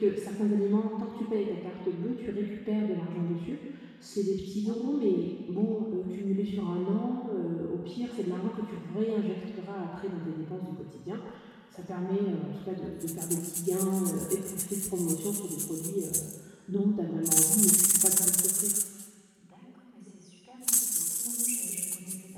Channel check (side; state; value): both; identical; correlation 1.00